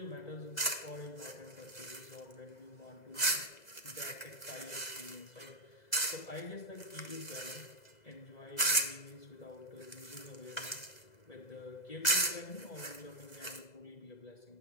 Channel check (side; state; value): right; late; 2.0 ms